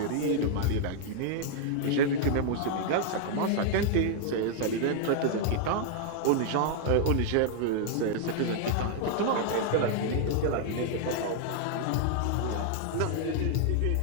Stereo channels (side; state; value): both; different; correlation -0.01